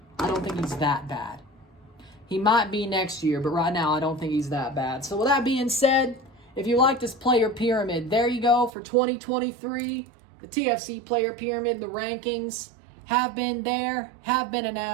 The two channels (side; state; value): left; drops out; at 8.7 s